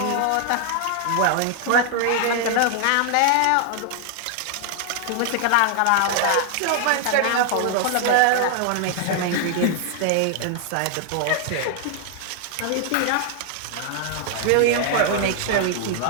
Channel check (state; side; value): different; both; correlation 0.00